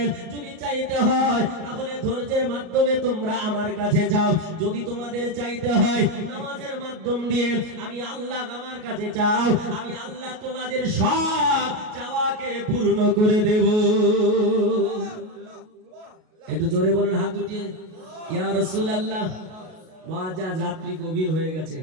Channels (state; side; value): late; left; 38 ms